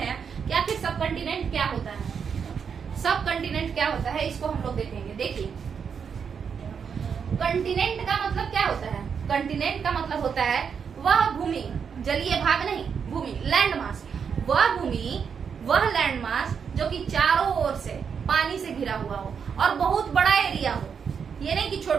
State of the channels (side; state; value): left; quieter; 6.7 dB